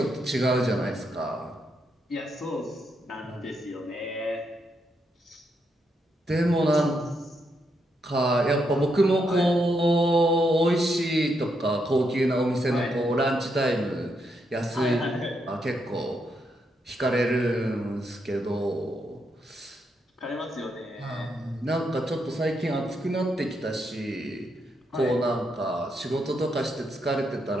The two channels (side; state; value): both; normal; correlation 0.80